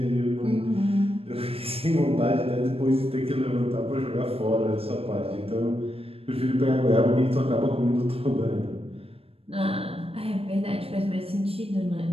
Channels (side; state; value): left; late; 0.28 ms